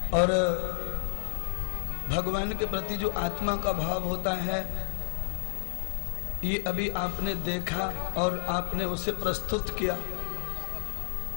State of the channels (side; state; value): right; silent; digital silence